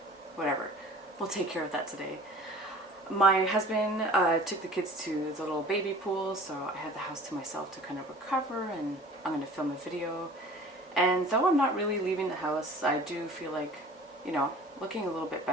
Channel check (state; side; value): normal; both; correlation 0.45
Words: whatever, we'll take care of that today. My husband took the kids to the little baby pool, so I had the house to myself to kind of recover, and I'm going to film a video. And though I'm not really leaving the house, I do feel like, looking a little bit